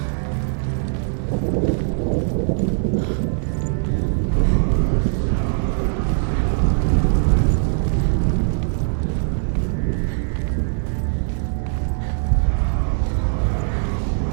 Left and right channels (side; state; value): left; silent; 65 dB below the other